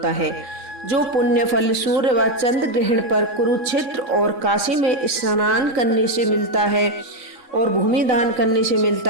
है। जो पुण्य फल सूर्य व चंद्र ग्रहण पर कुरुक्षेत्र और काशी में स्नान करने से मिलता है और भूमि दान करने से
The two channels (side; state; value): left; late; 3.6 ms